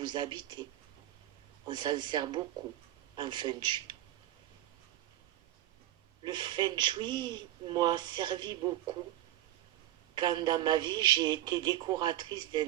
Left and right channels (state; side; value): quieter; left; 13.9 dB